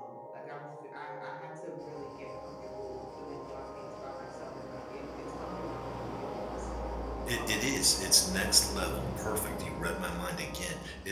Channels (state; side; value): identical; both; correlation 1.00